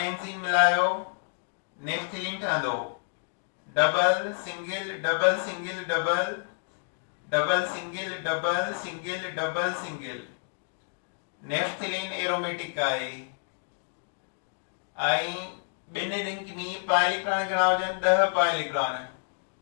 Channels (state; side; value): silent; right; digital silence